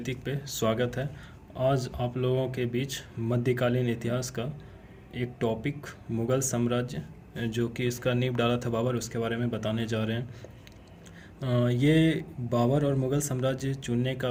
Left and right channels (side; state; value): both; identical; correlation 1.00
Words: पे स्वागत है। आज आप लोगों के बीच मध्यकालीन इतिहास का एक टॉपिक मुग़ल साम्राज्य जो कि इसका नींव डाला था बाबर, उसके बारे में बताने जा रहे हैं। ये बाबर और मुग़ल साम्राज्य चुनने का